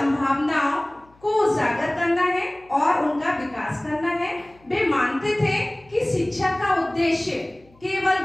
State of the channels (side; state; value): left; noise; hum, 30 dB below the sound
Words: को उजागर करना है और उनका विकास करना है। वे मानते थे कि शिक्षा का उद्देश्य